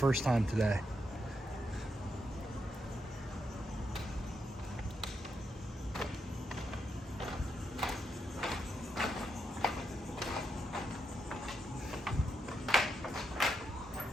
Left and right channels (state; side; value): normal; both; correlation 0.82